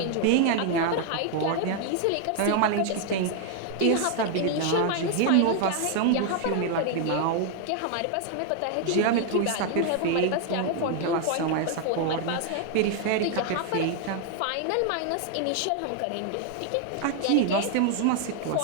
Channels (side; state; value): both; different; correlation 0.00